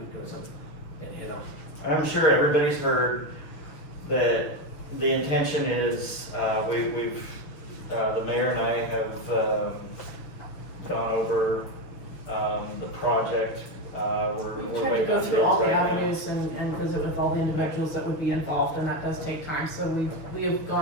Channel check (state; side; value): late; right; 6.8 ms